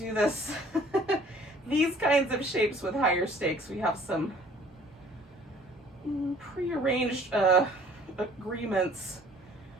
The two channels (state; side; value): normal; both; correlation 0.53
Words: this, these kinds of shapes with higher stakes, we have some prearranged agreements